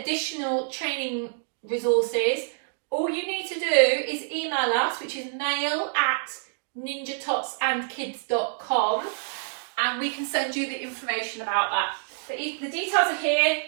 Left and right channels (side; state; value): left; silent; digital silence